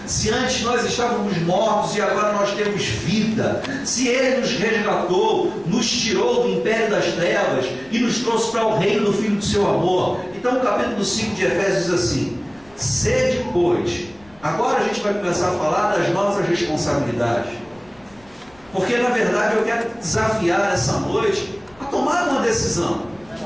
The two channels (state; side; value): noise; left; rumble, 28 dB below the sound